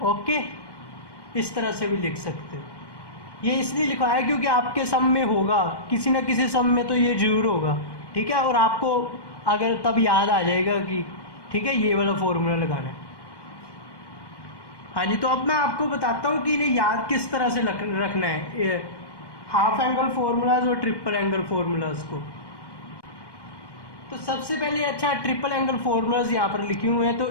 Okay, इस तरह से भी लिख सकते हो। ये इसलिए लिखा है क्योंकि आपके सम में होगा, किसी ना किसी सम में तो ये जरूर होगा। ठीक है, और आपको अगर तब याद आ जाएगा कि ठीक है ये वाला फॉर्मूला लगाना है। हाँ जी, तो अब मैं आपको बताता हूँ कि इन्हें याद किस तरह से रखना है, हाफ एंगल फॉर्मूलाज और ट्रिपल एंगल फॉर्मूलाज को। तो सबसे पहले, अच्छा, ट्रिपल एंगल फॉर्मूलाज यहाँ पर लिखे हुए हैं, तो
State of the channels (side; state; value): right; late; 1.1 ms